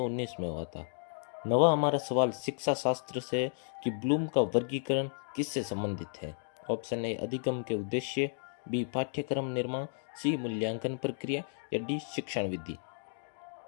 में हुआ था। नवा हमारा सवाल शिक्षा शास्त्र से कि ब्लूम का वर्गीकरण किससे संबंधित है। ऑप्शन ए अधिगम के उद्देश्य, बी पाठ्यक्रम निर्माण, सी मूल्यांकन प्रक्रिया या डी शिक्षण विधि।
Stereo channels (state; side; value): silent; right; digital silence